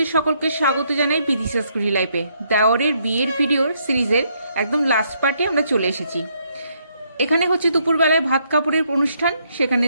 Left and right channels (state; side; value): inverted; both; correlation -0.72